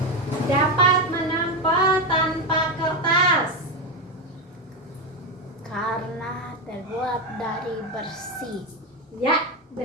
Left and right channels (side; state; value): both; normal; correlation 0.11